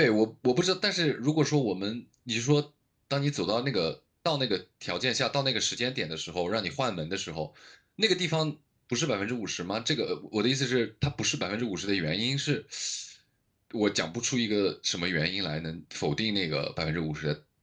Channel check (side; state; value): both; identical; correlation 1.00